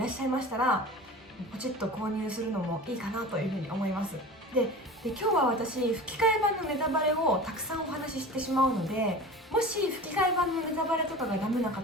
っしゃいましたらポチッと購入するのもいいかなというふうに思います。で今日は私吹き替え版のネタバレをたくさんお話ししてしまうので、もし吹き替え版のネタバレとかがダメな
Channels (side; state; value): both; normal; correlation 0.35